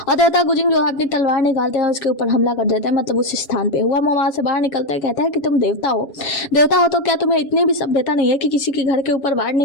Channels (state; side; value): late; right; 7.2 ms